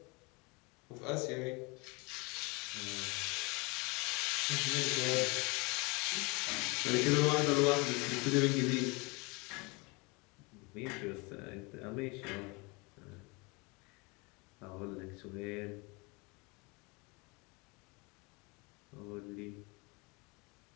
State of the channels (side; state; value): right; quieter; 28.0 dB